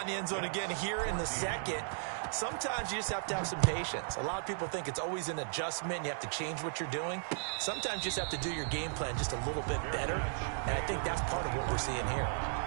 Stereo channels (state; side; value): silent; left; digital silence